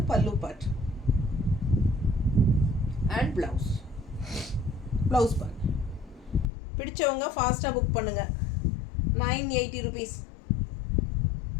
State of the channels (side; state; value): right; drops out; at 6.5 s